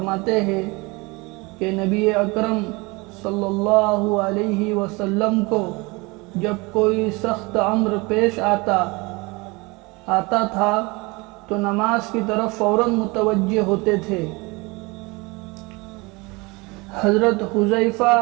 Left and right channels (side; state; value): left; quieter; 25.5 dB